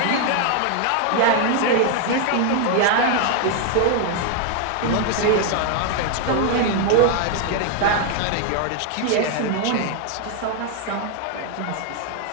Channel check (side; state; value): both; different; correlation 0.00